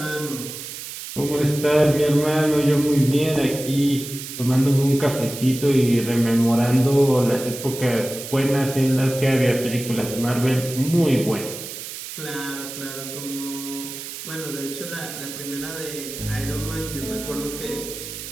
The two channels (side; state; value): right; noise; hiss, 10 dB below the sound